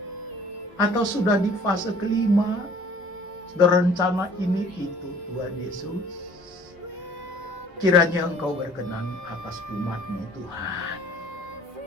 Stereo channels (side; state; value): both; normal; correlation 0.52